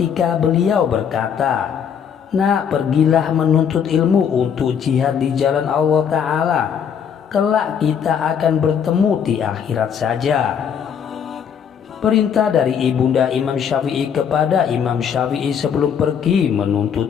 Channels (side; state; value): right; quieter; 7.7 dB